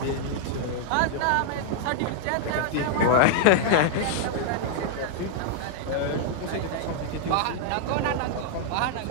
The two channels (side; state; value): both; different; correlation -0.01